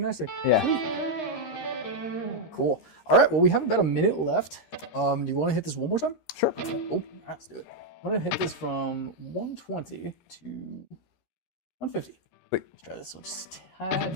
Yeah. Sweet. Cool. All right, well, we have about a minute left. Do you want to hit this one more time? Sure. Cool. All right, let's do it. I'm going to hit this from 120 to 150. Wait. Let's try this one just a tad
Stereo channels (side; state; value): right; late; 13 ms